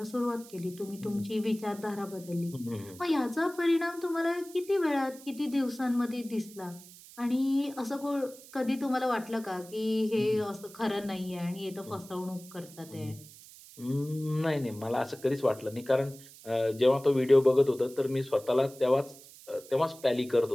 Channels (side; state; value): right; noise; hiss, 19 dB below the sound